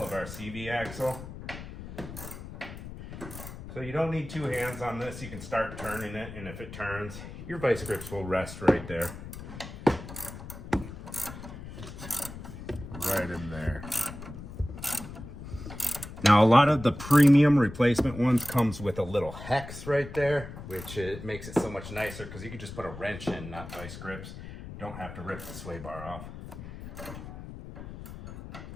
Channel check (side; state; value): left; noise; rumble, 12 dB below the sound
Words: our CV axle. So you don't need 2 hands on this. You can start turning it, and if it turns, your vice grips will rest right there. Right in there. Now, a lot of the premium replacement ones comes with a little hex right there, which it makes it so much nicer because you can just put a wrench in, not vice grips. Don't have to rip the sway bar off.